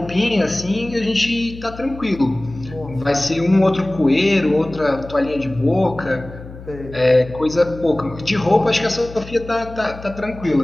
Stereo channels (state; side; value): noise; left; hum, 15 dB below the sound